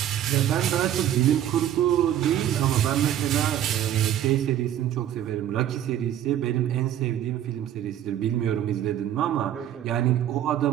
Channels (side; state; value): left; quieter; 11.2 dB